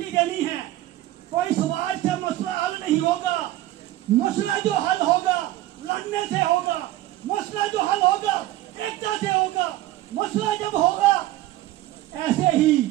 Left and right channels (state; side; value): quieter; left; 15.6 dB